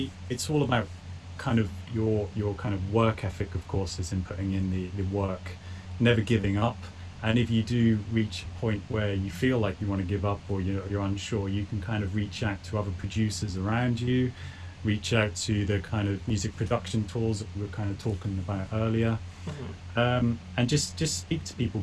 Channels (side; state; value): both; identical; correlation 1.00